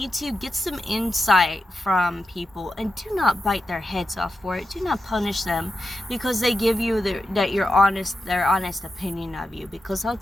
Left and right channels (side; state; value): both; normal; correlation 0.89